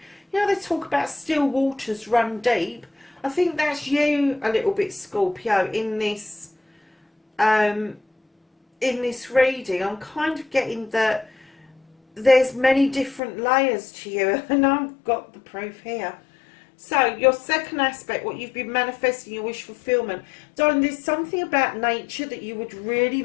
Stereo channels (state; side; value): drops out; right; at 13.2 s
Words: You know, they talk about still waters run deep. I think that's you a little bit, Scorpio, in this reading. I'm kind of getting that there's many different layers to you, and I've got the proof here. So, your second aspect, what you've been manifesting, your wish fulfillment. Darling, there's something about nature that you would really